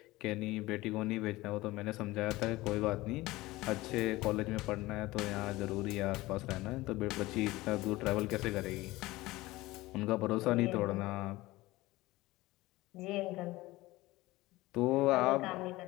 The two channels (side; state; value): right; quieter; 19.2 dB